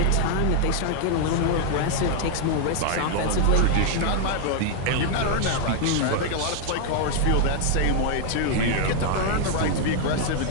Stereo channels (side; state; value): both; different; correlation 0.00